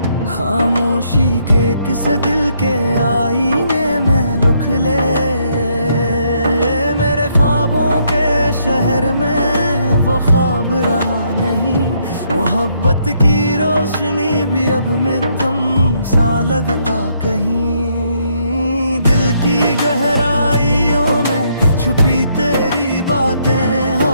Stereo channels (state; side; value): inverted; both; correlation -0.72